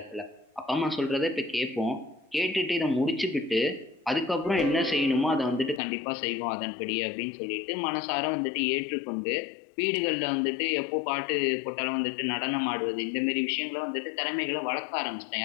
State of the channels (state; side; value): drops out; right; at 5.8 s